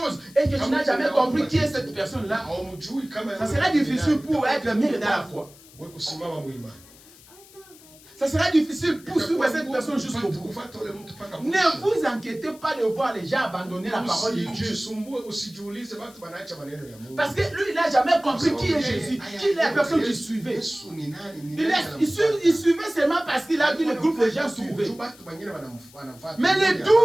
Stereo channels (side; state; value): left; noise; hiss, 23 dB below the sound